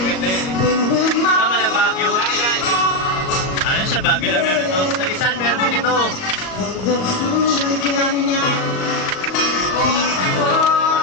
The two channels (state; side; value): late; right; 38 ms